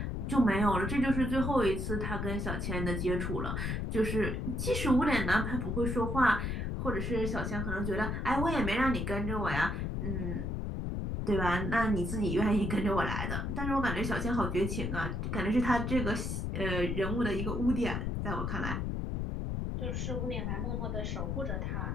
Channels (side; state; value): left; noise; rumble, 1 dB below the sound